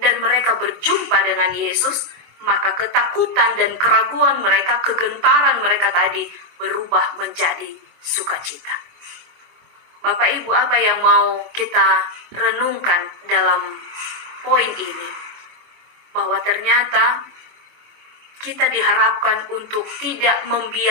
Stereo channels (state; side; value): late; left; 24 ms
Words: mereka berjumpa dengan Yesus, maka ketakutan dan keraguan mereka, kegentaran mereka tadi berubah menjadi sukacita. Bapak Ibu, apa yang mau kita renungkan dalam poin ini? Bahwa ternyata kita diharapkan untuk tidak